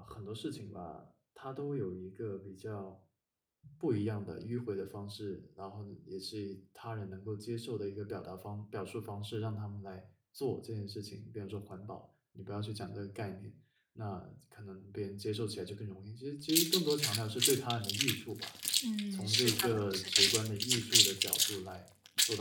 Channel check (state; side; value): identical; both; correlation 1.00